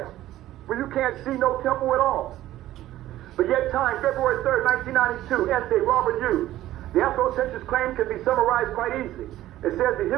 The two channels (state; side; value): quieter; left; 14.4 dB